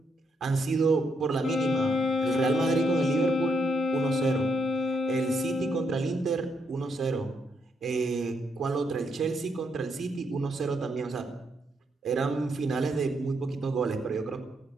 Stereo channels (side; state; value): both; normal; correlation 0.77